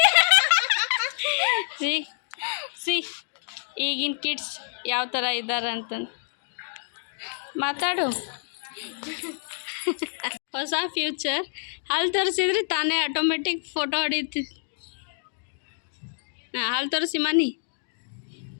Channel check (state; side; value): silent; right; digital silence